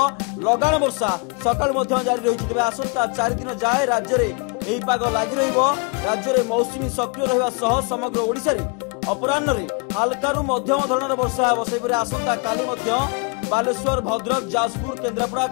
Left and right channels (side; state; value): right; quieter; 32.8 dB